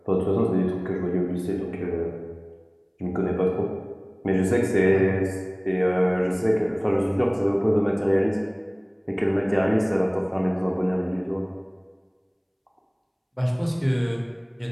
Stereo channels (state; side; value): identical; both; correlation 1.00